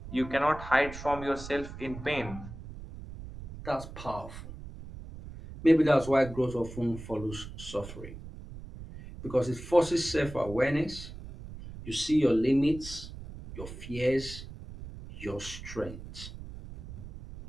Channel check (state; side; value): noise; right; rumble, 12 dB below the sound